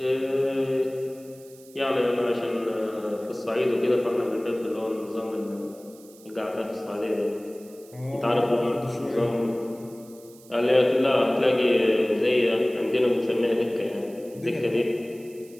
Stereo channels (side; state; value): right; noise; hiss, 24 dB below the sound